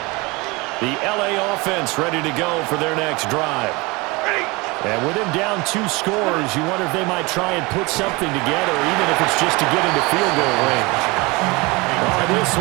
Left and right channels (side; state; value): left; quieter; 24.9 dB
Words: The LA offense ready to go for their next drive. And with him down 2 scores, you wonder if they might try and put something together, even if it's just to get into field goal range. Oh, this